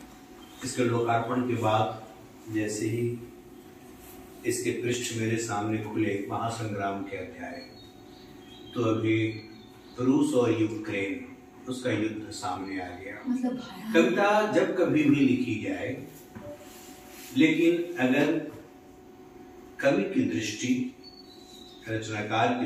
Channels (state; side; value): identical; both; correlation 1.00